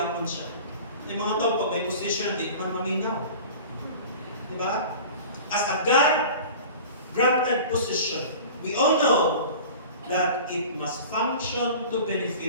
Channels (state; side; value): inverted; both; correlation -0.39